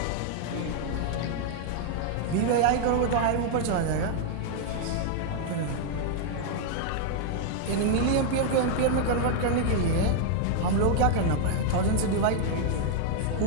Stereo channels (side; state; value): both; different; correlation 0.00